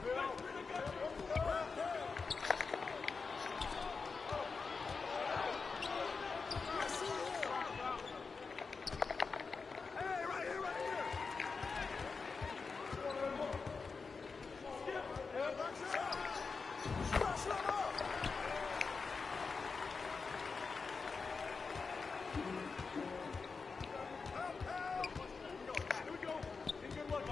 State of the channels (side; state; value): right; quieter; 4.7 dB